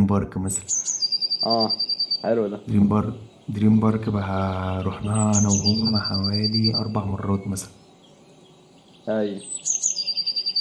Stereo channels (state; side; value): identical; both; correlation 1.00